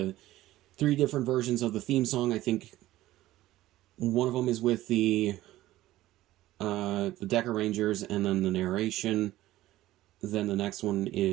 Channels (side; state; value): left; quieter; 15.7 dB